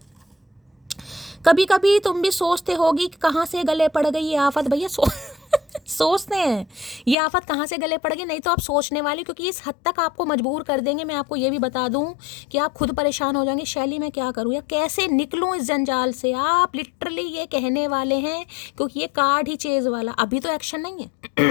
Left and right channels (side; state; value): right; drops out; at 7.2 s